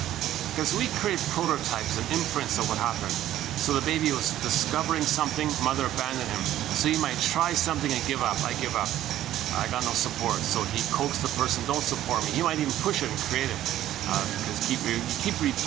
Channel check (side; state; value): left; quieter; 13.0 dB